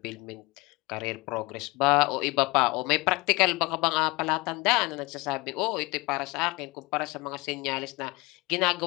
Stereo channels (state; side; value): quieter; right; 23.8 dB